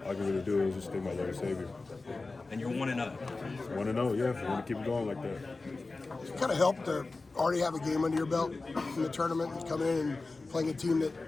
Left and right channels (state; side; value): quieter; right; 3.6 dB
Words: all I can really do is just thank my Lord and Savior. And you're 1-0. 1-0, yeah. I want to keep it going like that. It kind of helped to already have a game under your belt in the tournament and coming in and playing a team that